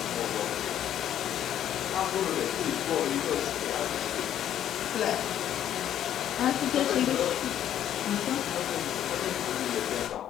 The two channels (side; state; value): right; quieter; 10.8 dB